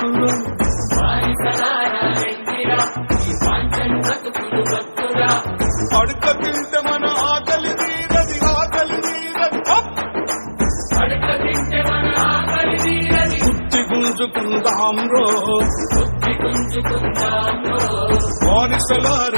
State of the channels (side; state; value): both; inverted; correlation -1.00